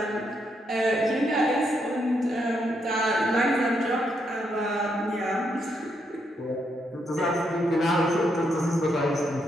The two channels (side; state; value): both; normal; correlation 0.78